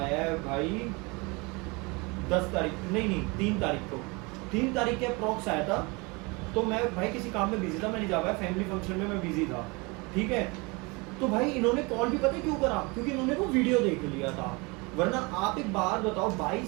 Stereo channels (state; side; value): quieter; left; 27.2 dB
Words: है भाई 10 तारीख, नहीं 3 तारीख को, 3 तारीख के अप्रॉक्स आया था। तो मैं भाई किसी काम में बिजी था, मैं नहीं जा पाया, फैमिली फंक्शन में मैं बिजी था, ठीक है? तो भाई इन्होंने कॉल भी पता क्यों करा, क्योंकि इन्होंने वो वीडियो देख लिया था। वरना आप एक बार बताओ